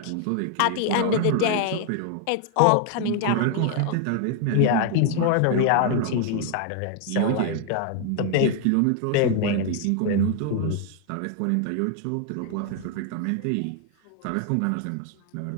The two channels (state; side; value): different; both; correlation 0.00